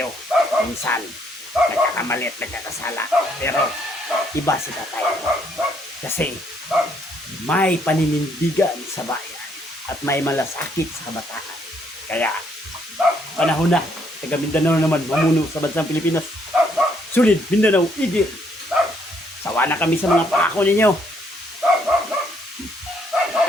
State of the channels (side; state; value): both; normal; correlation 0.69